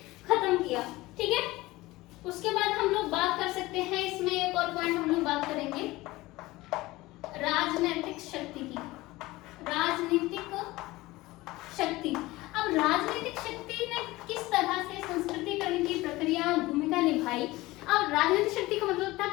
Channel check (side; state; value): right; quieter; 19.4 dB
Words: खत्म किया। ठीक है, उसके बाद हम लोग बात कर सकते हैं, इसमें एक और पॉइंट हम लोग बात करेंगे राजनीतिक शक्ति की। राजनीतिक शक्ति, अब राजनीतिक शक्ति ने किस तरह से संस्कृतिकरण की प्रक्रिया भूमिका निभाई। अब राजनीतिक शक्ति का मतलब था